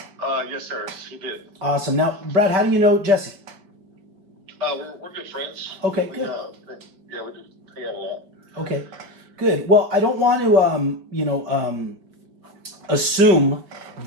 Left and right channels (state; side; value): late; left; 5.2 ms